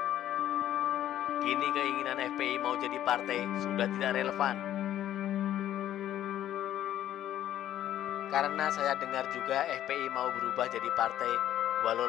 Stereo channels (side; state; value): right; quieter; 11.9 dB